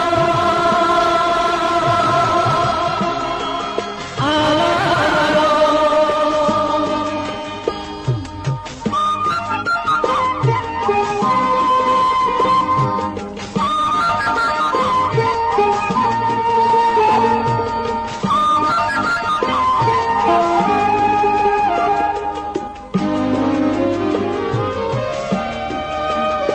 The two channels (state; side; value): identical; both; correlation 1.00